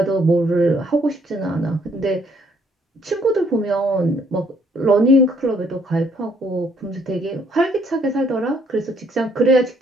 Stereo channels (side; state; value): both; normal; correlation 0.66